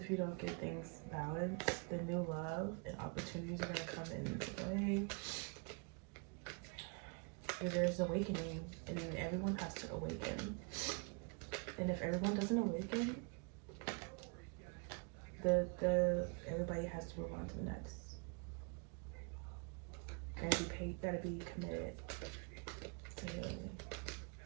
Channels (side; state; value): left; quieter; 36.8 dB